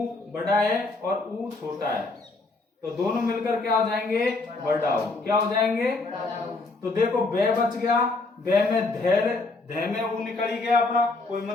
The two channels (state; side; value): quieter; right; 3.5 dB